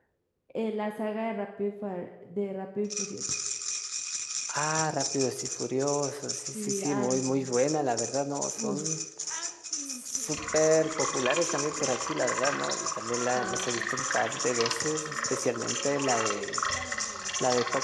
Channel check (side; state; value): both; identical; correlation 1.00